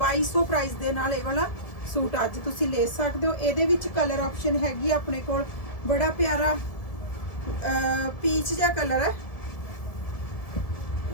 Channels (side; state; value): right; late; 1.7 ms